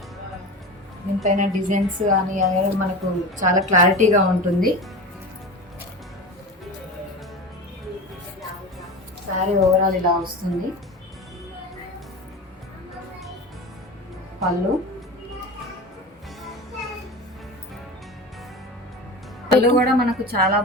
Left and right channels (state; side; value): normal; both; correlation 0.29